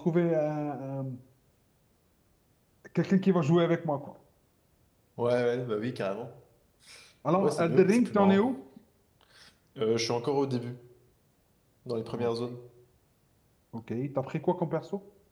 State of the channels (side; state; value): both; identical; correlation 1.00